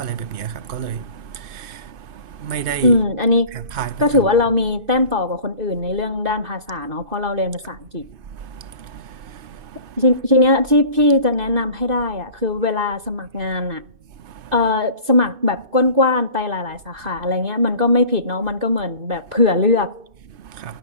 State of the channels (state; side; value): late; left; 2.6 ms